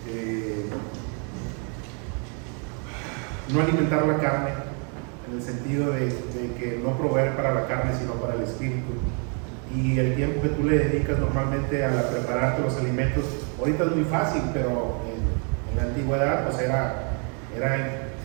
no alimentar la carne, en el sentido de que no proveer para la carne, sino para el espíritu. Y el tiempo que tú le dedicas normalmente a prepararte los alimentos, ahorita es muy fácil, pero en la antigüedad pues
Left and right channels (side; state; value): left; quieter; 39.0 dB